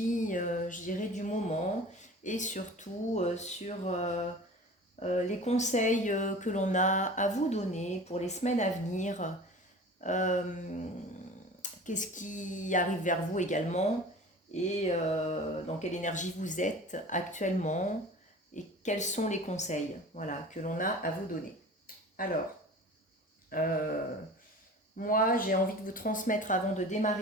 je dirais, du moment et surtout sur les conseils que l'on a à vous donner pour les semaines à venir. Euh, Qu'est-ce qui arrive vers vous également et dans quelle énergie vous êtes actuellement et quels sont les conseils, voilà, que l'on a à vous donner. Alors, euh, moi j'ai envie de vous transmettre avant de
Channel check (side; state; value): both; normal; correlation 0.39